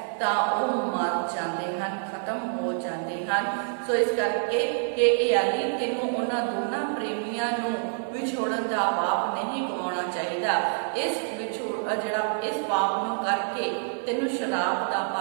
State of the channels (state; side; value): silent; left; 60 dB below the other